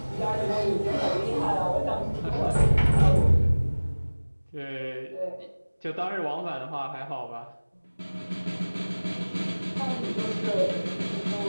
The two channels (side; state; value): both; inverted; correlation -1.00